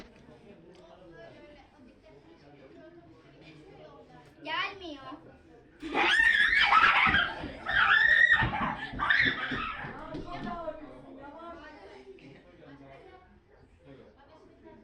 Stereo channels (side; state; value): both; identical; correlation 1.00